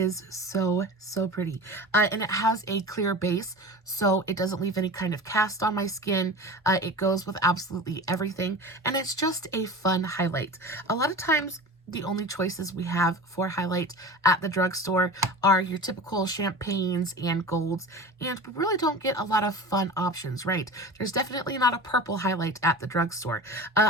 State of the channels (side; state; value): both; normal; correlation 0.33